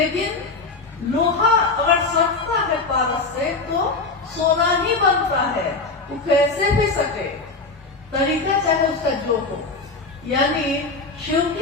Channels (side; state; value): right; quieter; 3.8 dB